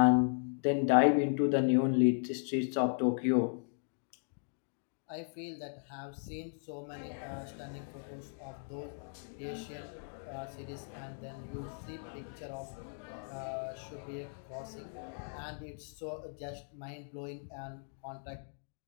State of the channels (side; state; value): right; silent; digital silence